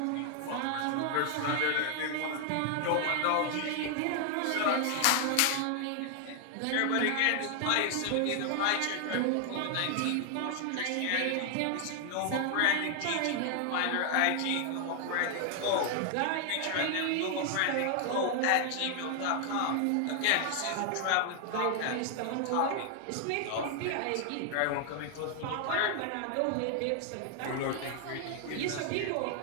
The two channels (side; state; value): both; different; correlation 0.00